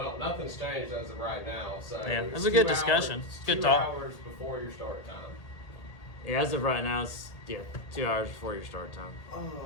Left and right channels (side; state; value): right; late; 1.8 ms